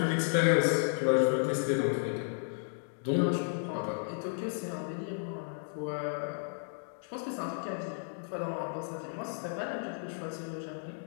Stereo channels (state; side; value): silent; right; digital silence